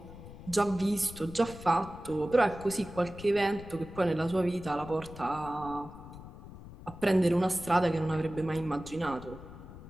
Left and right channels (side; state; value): left; noise; rumble, 15 dB below the sound